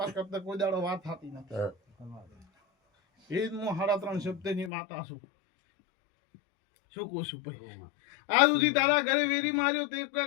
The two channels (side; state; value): right; drops out; at 4.7 s